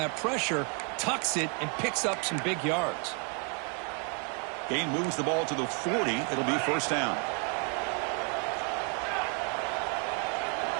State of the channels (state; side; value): quieter; left; 37.0 dB